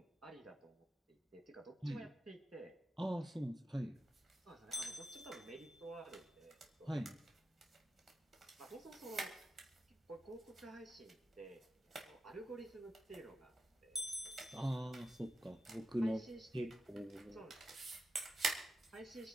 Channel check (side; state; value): both; normal; correlation 0.88